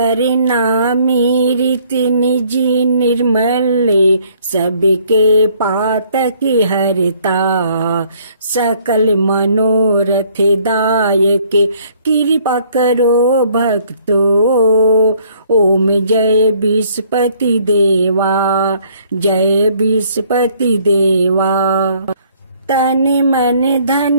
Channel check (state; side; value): inverted; both; correlation -0.62